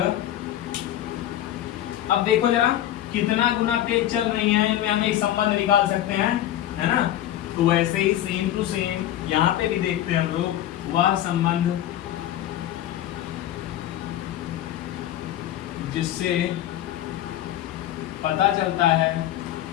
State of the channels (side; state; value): right; quieter; 12.6 dB